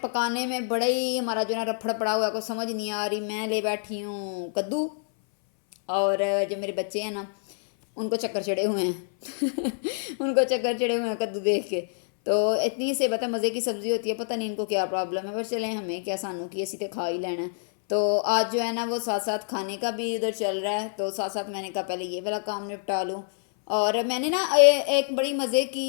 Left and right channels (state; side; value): silent; right; 59 dB below the other